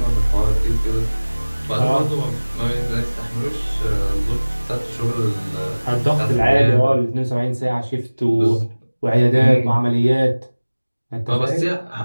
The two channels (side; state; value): both; inverted; correlation -1.00